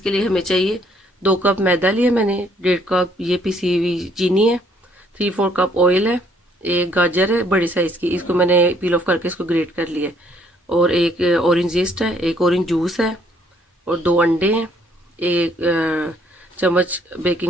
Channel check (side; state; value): both; normal; correlation 0.65